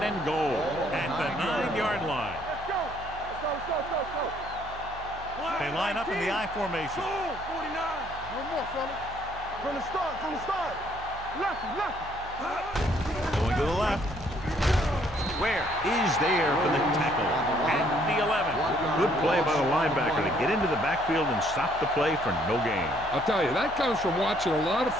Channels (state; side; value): noise; right; hum, 17 dB below the sound